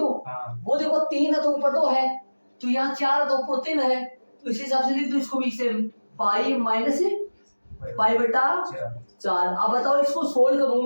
वो देखो 3 है तो ऊपर 2 है तो यहाँ 4 है तो ऊपर 3 है तो इसी हिसाब से लिख दो इसको भी सेम पाई माइनस पाई बटा 4 अब बताओ इसको सोल्व करूं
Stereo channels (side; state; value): both; inverted; correlation -1.00